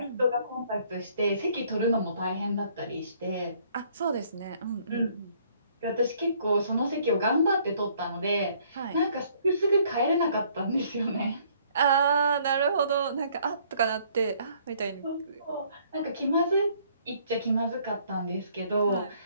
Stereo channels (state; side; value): inverted; both; correlation -0.62